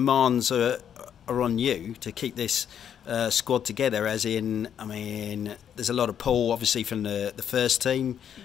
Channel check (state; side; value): quieter; right; 8.9 dB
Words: are on you to keep this squad together, as in, I mean, there's a lot of pull obviously from the first team,